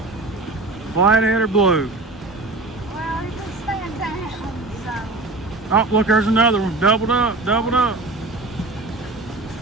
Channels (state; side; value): quieter; left; 3.2 dB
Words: Flathead or blue? Well, he can stand down, so. Oh, look, there's another one. Doubled up, doubled up.